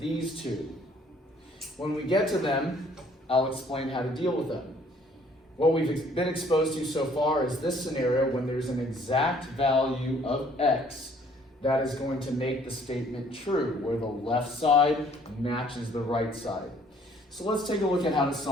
two. When we get to them, I'll explain how to deal with them. What we've been exposed to so far is this scenario when there's an exact value of x that is going to make the statement true, where the left side matches the right side. So let's take a look at how to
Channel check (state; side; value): normal; both; correlation 0.60